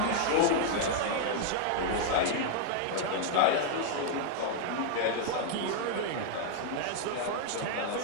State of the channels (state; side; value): different; both; correlation -0.01